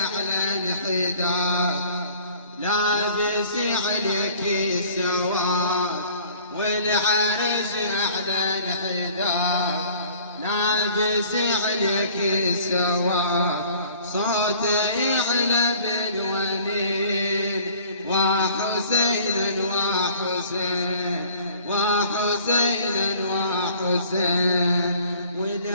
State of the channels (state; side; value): inverted; both; correlation -0.52